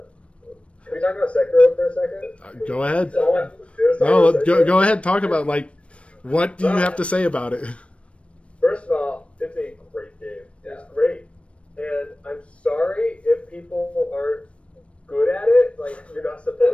we talk about Sekiro for a second? Go ahead. That's all I have to do is talk No, about Sekiro. go ahead. Talk about what do you have to say about it? First of all, it's a great game. It's great. And I'm sorry if people aren't good at it. You're not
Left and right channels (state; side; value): late; right; 0.061 ms